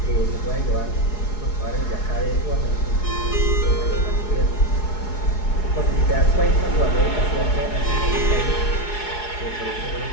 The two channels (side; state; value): right; late; 4.7 ms